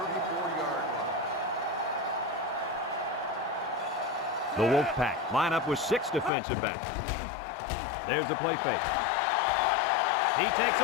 the 34-yard line. The Wolfpack line up with 6 defensive backs. There's the play fake. He takes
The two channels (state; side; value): drops out; right; at 6.3 s